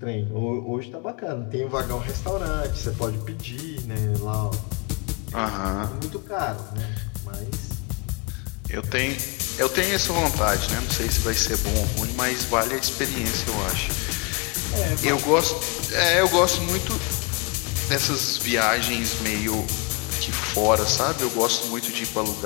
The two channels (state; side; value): quieter; right; 30.1 dB